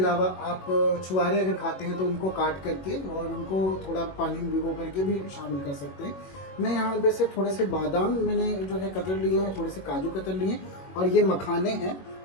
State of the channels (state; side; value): late; right; 21 ms